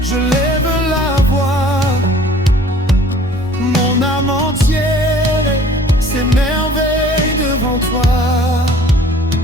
lève la voix. Mon âme entière s'émerveille devant toi.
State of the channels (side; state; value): both; normal; correlation 0.52